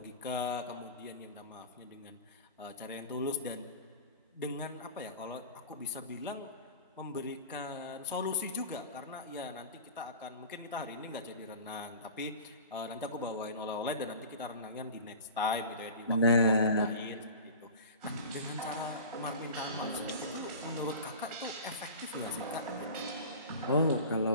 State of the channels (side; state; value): both; inverted; correlation -0.36